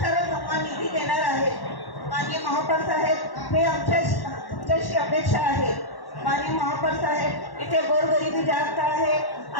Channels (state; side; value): late; right; 1.1 ms